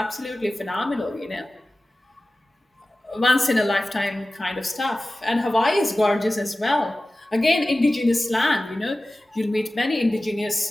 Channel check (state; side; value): normal; both; correlation 0.96